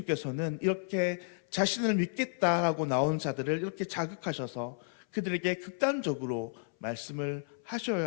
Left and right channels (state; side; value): silent; right; 56 dB below the other